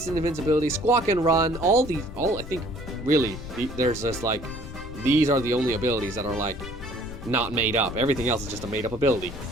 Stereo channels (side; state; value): left; noise; rumble, 11 dB below the sound